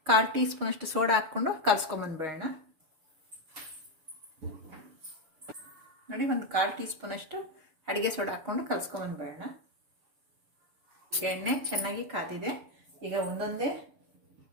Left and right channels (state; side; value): late; left; 6.9 ms